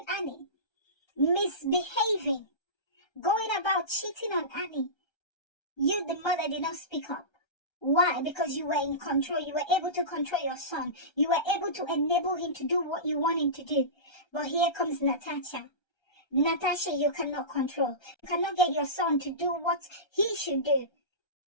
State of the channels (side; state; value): right; late; 1.3 ms